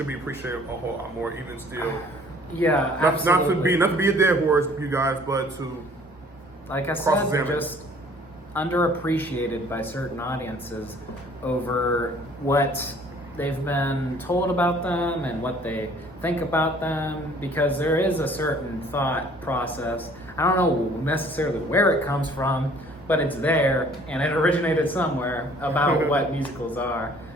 be appreciated a whole lot more, even still? Yeah, absolutely. Not to be a dead horse, you guys, but to, like I said, they're just underappreciated by certain audiences over what they've been told about them and what they think about them, because there is a certain thought process. I don't know necessarily where it comes from, but it's there and it originated somewhere about what musicals are.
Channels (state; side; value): normal; both; correlation 0.55